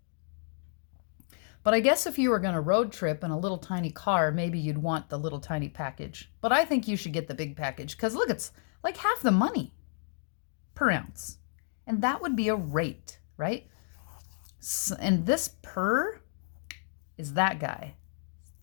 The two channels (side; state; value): right; silent; digital silence